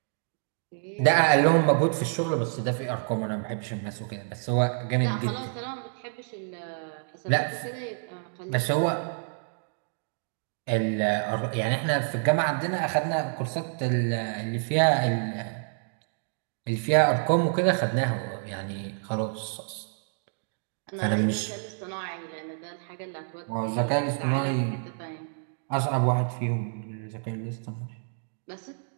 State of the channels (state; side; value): silent; left; digital silence